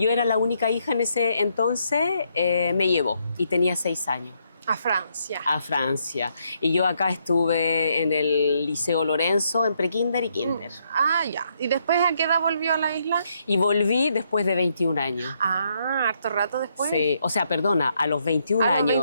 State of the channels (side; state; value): both; inverted; correlation -0.75